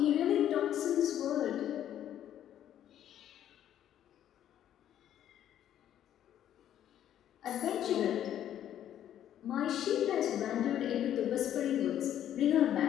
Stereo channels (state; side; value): quieter; right; 10.9 dB